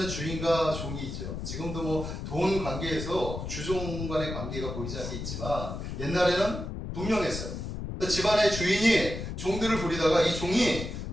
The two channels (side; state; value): left; noise; rumble, 6 dB below the sound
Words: 주인과 종이 있죠. 지금도 뭐 돈 관계에서 주종 간의 관계가 보이지 않게 있지만 옛날에는 분명했어요. 집안의 주인이 종들을 부리다가 이 종이